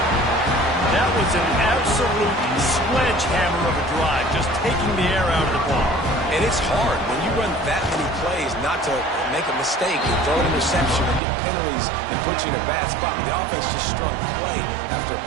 That was an absolute sledgehammer of a drive, just taking the air out of the ball. And it's hard when you run that many plays not to make a mistake and throw an interception and get penalties and put you in a bad spot. The offense just strung play after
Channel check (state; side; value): drops out; left; at 11.2 s